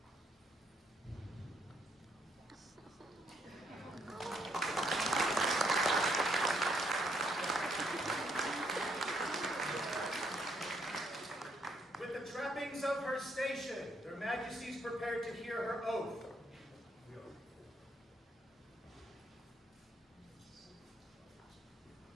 With the trappings of her station, their Majesties prepared to hear her oath.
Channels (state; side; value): normal; both; correlation 0.72